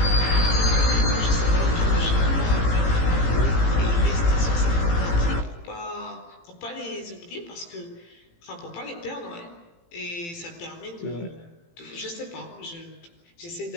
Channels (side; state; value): right; late; 18 ms